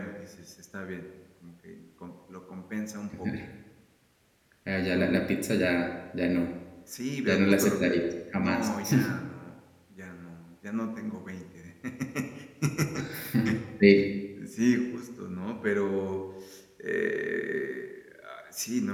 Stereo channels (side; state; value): both; identical; correlation 1.00